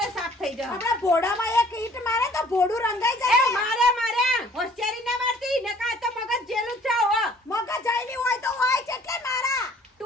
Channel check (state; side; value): normal; both; correlation 0.55